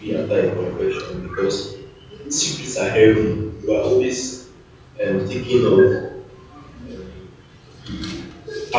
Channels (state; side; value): identical; both; correlation 1.00